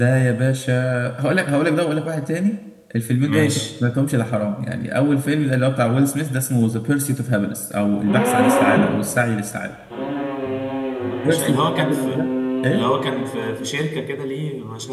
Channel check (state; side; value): identical; both; correlation 1.00